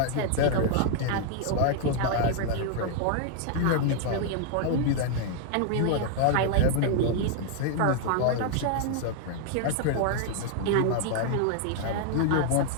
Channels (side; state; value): both; different; correlation 0.00